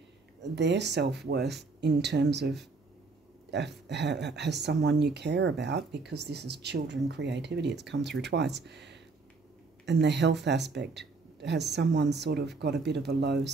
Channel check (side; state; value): left; quieter; 4.1 dB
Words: their self-worth in terms of has someone you care about, because this is children creativity, it's come through twice. And the health aspect, has someone sort of got a bit of a low